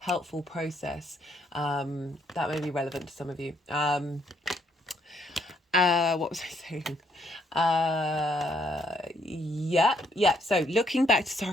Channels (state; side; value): normal; both; correlation 0.71